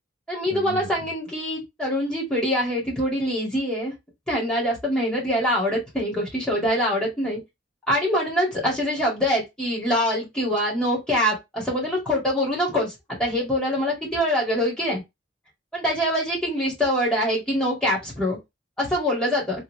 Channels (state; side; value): normal; both; correlation 0.33